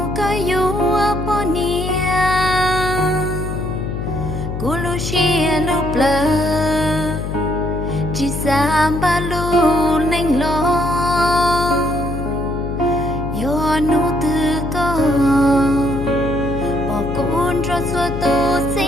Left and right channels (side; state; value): left; noise; hum, 5 dB below the sound